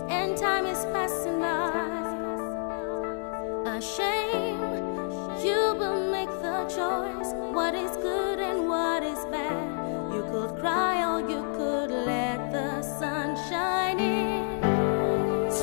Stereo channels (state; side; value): silent; right; digital silence